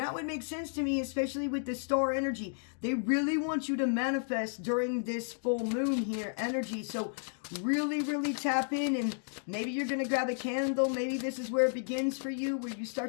would make sense to me, especially with the star energy. They really want you to manifest during this full moon here energy. So really, really tap in, and maybe you're going to grab a candle. Maybe this is where it begins for you, where you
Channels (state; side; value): silent; right; digital silence